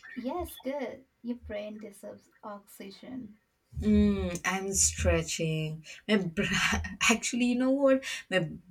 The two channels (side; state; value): both; identical; correlation 1.00